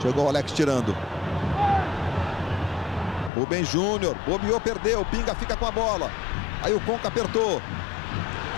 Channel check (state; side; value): drops out; right; at 3.3 s